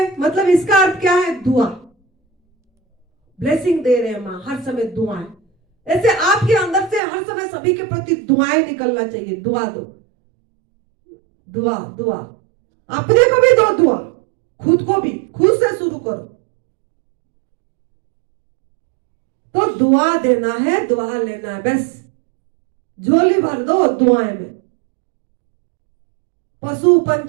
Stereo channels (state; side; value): drops out; left; at 7.0 s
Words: मतलब इसका अर्थ क्या है, दुआ, ब्लेसिंग दे रहे हैं माँ, हर समय दुआएं। ऐसे आपके अंदर से हर समय सभी के प्रति दुआएं निकलना चाहिए। दुआ दो, दुआ दुआ, अपने को भी दो दुआ, खुद को भी, खुद से शुरू करो। तो दुआ देना है, दुआ लेना है, बस झोली भर दो दुआएं में। पशु